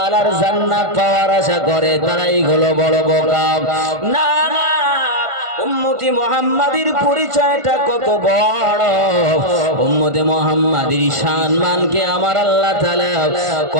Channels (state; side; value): late; left; 1.5 ms